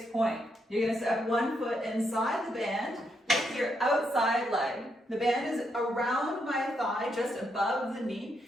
point. You're going to step one foot inside the band with your outside leg. The band is around my thigh, just above the knee,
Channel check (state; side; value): normal; both; correlation 0.79